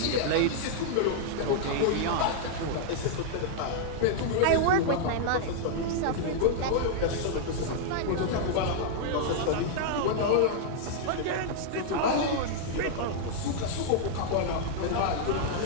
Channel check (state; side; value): different; both; correlation -0.01